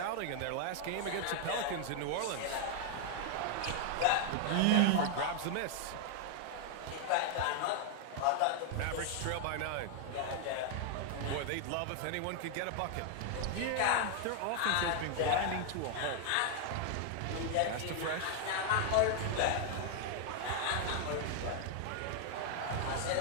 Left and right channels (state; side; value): different; both; correlation 0.00